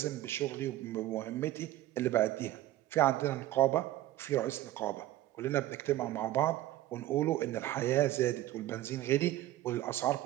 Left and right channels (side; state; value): left; quieter; 14.8 dB